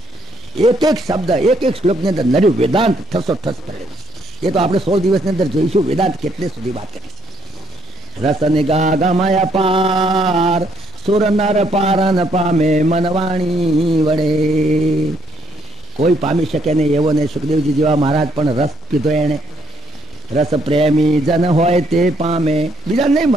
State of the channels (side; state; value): both; normal; correlation 0.70